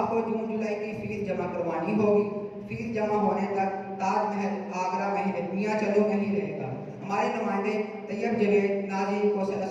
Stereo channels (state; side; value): identical; both; correlation 1.00